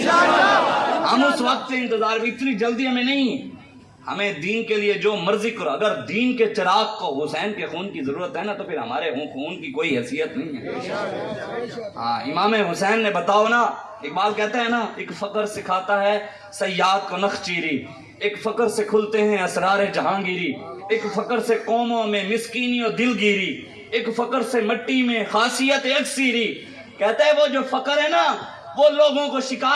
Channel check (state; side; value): identical; both; correlation 1.00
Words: ہم اس وقت سے انتظار بھی، اتنی جلدی ہمیں نہیں، ہمیں دین کے لیے جو مرضی کرو، اگر دین کے چراغ کو حسین کے خون کی ضرورت ہے نا تو پھر ہمارے خون کی کوئی حیثیت نہیں ہے۔ ہاں امام حسین نے بتاؤ نا، اقبال کہتا ہے نا ایک فقر سکھاتا ہے صیاد کو نخچیری، ایک فقر سے کھلتے ہیں اسرار جہانگیری، ایک فقر سے قوموں میں مسکینی و دلگیری، ایک فقر سے مٹی میں خاصیت اکثیری. کہتا ہے وہ جو فقر ہے نا، وہ لوگوں کو